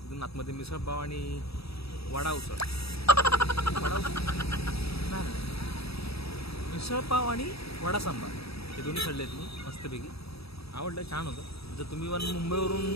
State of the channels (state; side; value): late; right; 0.77 ms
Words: तिथून आतमध्ये मिसळपाव आणि वडा उसळ. मिसळपाव आणि वडा सांबार हे दोन्ही खाल्ले आहेत मी मस्तपैकी. आवडलं, छान होतं. जर तुम्ही